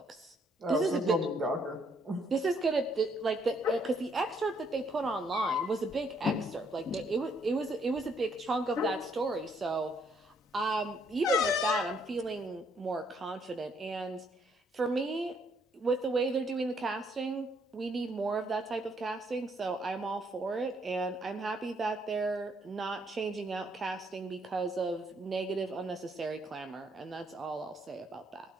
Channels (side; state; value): both; normal; correlation 0.69